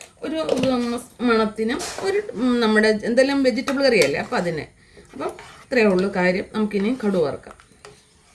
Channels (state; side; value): identical; both; correlation 1.00